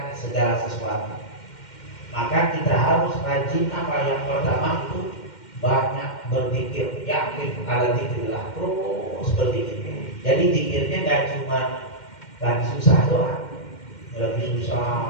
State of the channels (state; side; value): late; right; 2.1 ms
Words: segala sesuatu. Maka kita harus rajin apa? Yang pertama itu banyak berzikir, yakin ala dzikrillah, terus berzikir. Jadi zikirnya nggak cuma lagi susah doang, lagi